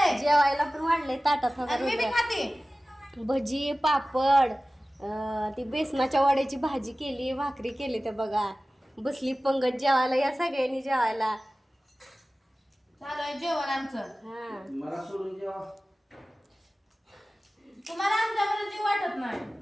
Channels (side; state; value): both; normal; correlation 0.97